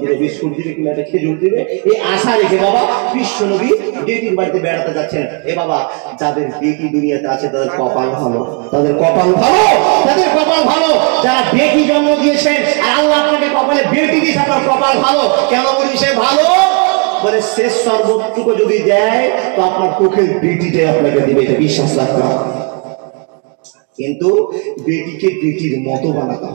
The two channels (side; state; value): left; quieter; 35.2 dB